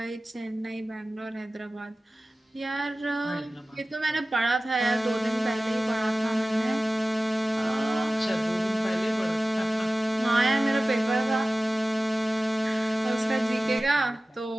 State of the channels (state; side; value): normal; both; correlation 0.96